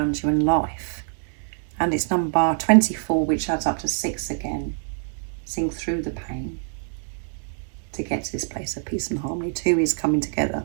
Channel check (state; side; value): silent; left; 62 dB below the other